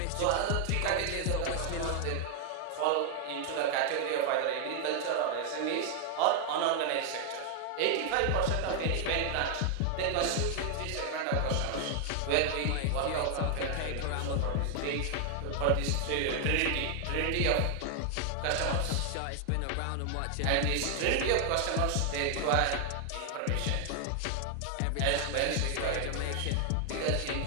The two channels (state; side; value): different; both; correlation 0.00